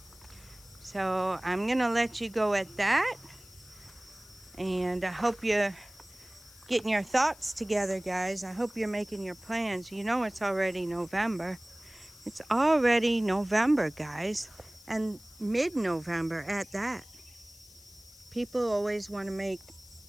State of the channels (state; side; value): noise; left; hiss, 22 dB below the sound